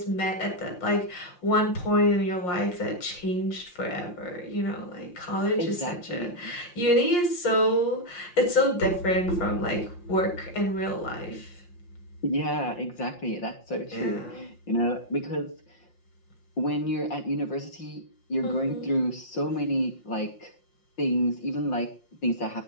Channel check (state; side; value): late; right; 5.7 ms